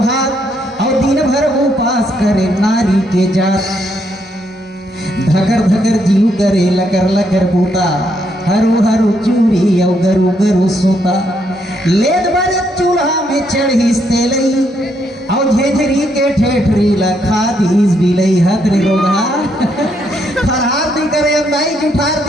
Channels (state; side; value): normal; both; correlation 0.75